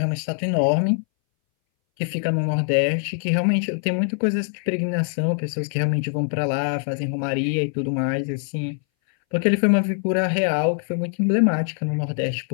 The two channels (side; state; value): right; silent; 61 dB below the other